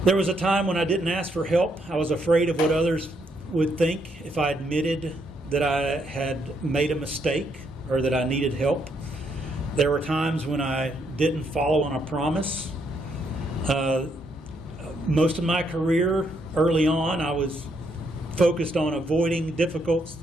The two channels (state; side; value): normal; both; correlation 0.75